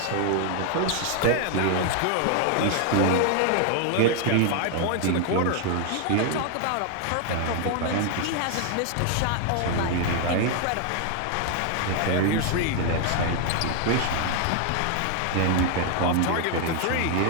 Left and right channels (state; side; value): different; both; correlation 0.00